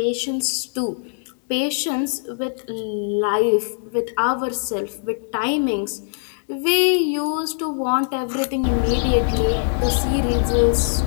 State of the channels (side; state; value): right; silent; 64 dB below the other